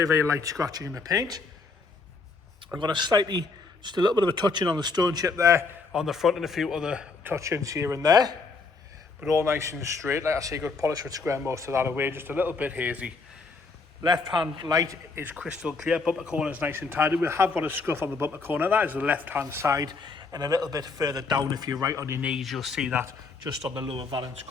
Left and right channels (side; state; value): right; quieter; 4.2 dB